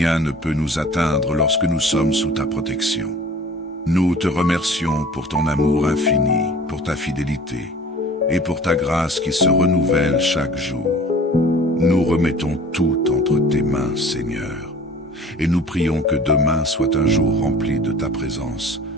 ne peut nous atteindre lorsque nous sommes sous ta protection. Nous te remercions pour ton amour infini, pour ta fidélité et pour ta grâce qui se renouvelle chaque jour. Nous remettons tout entre tes mains, Seigneur, et nous prions que demain soit un jour rempli de ta présence,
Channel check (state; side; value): normal; both; correlation 0.46